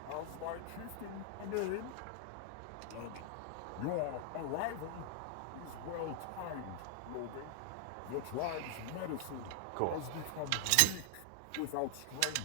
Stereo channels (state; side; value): different; both; correlation 0.00